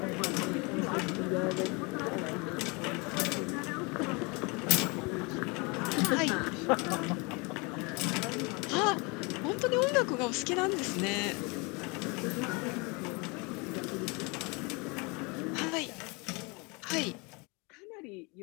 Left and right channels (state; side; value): quieter; right; 28.8 dB